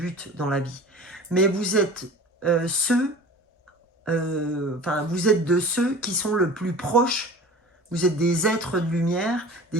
dans la vie. Mais vous êtes vous êtes de ceux qui sont le plus proches. Vous êtes des êtres de lumière,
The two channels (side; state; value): both; normal; correlation 0.40